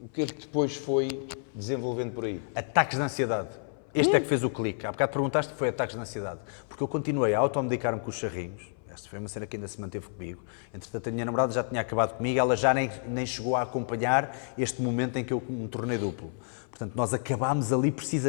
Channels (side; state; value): right; silent; 57 dB below the other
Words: depois foi desenvolvendo por aí? Ataques de ansiedade. Este é que fez o clique. Há bocado perguntaste que foi ataques de ansiedade. Porque eu continuei a automedicar-me com os charrinhos. Esta foi uma cena que ainda se manteve comigo. Entretanto, a minha namorada já tinha acabado comigo, ela já nem chegou a acompanhar este momento em que eu me tornei duplo. Portanto, nós acabámos ali